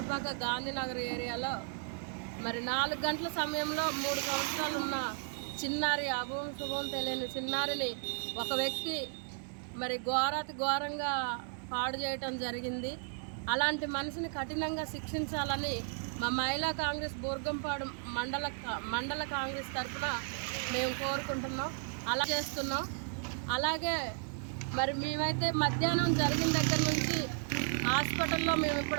గాంధీనగర్ ఏరియాలో మరి 4 గంటల సమయంలో 3 సంవత్సరాలు ఉన్న చిన్నారి అభం శుభం తెలియని చిన్నారిని ఒక వ్యక్తి మరి ఘోరంగా పాడు చేయటం జరిగింది. అలాంటి మనిషిని కఠినంగా శిక్షించాలని మా మహిళా కాంగ్రెస్ బూర్గంపాడు మండల కాంగ్రెస్ తరఫున మేము కోరుకుంటున్నాం, అలా చేస్తున్నాం. అలాగే మరి మేమైతే మధ్యాహ్నం జరిగిన దగ్గర నుంచి హాస్పిటల్లో మేము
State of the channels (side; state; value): left; silent; 55 dB below the other